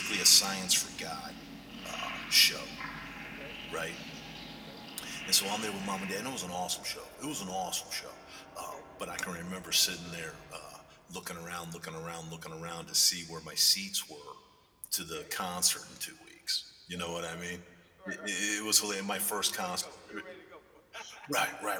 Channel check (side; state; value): both; identical; correlation 1.00